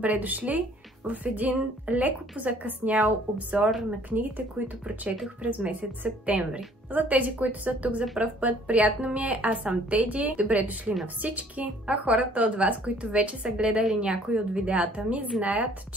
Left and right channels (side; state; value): both; normal; correlation 0.57